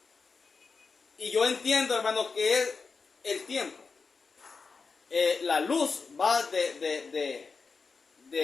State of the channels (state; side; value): quieter; right; 4.8 dB